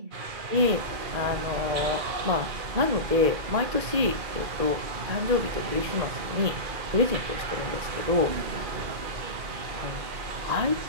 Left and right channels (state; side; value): late; left; 2.1 ms